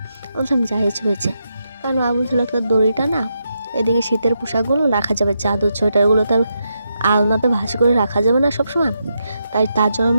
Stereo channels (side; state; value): both; inverted; correlation -0.84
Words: বলছিলাম যা হয়েছে, কারণ মা বলছিল একটা দড়িটা না, এদিকে শীতের পোশাকগুলো রাখা যাবে, চাদর সোয়েটারগুলো তার আলনাতে ভাঁজ করে রাখা যাবে না সবসময়, তাই তার জন্য